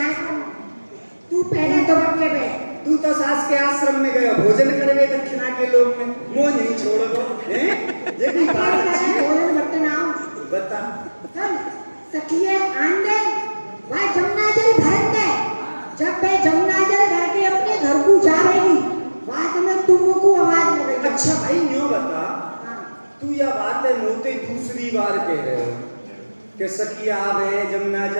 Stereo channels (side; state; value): both; inverted; correlation -1.00